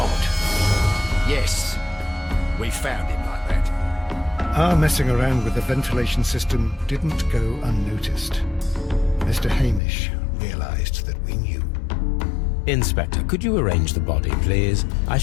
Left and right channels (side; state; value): right; drops out; at 9.8 s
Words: Yes, we found him like that. Our messing around with the ventilation system didn't go unnoticed. Mr. Hamish realized that we knew. Inspector, could you arrange the body, please? I